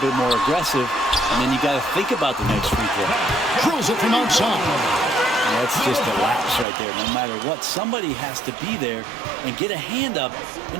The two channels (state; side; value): drops out; left; at 6.7 s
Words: more aggressive, and then you got to think about the next free throw. Drills it from outside. That's just a lapse right there. No matter what, somebody has to be there and get a hand up